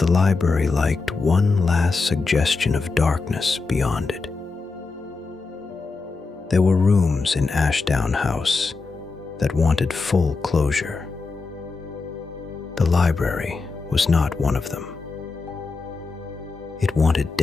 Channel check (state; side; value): quieter; right; 4.1 dB